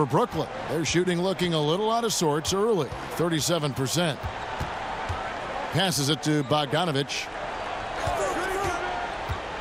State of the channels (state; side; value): identical; both; correlation 1.00